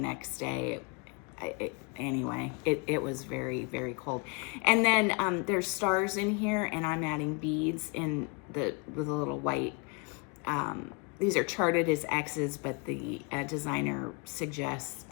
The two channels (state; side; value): quieter; right; 31.8 dB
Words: day. Anyway, it was very, very cold. And then there's stars in here, and I'm adding beads with a little white. These are charted as X's, but the designer suggests